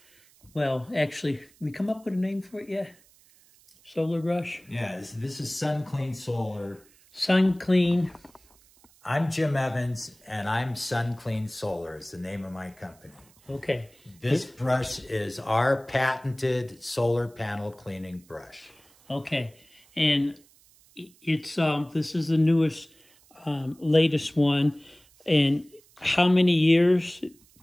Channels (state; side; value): noise; right; hiss, 29 dB below the sound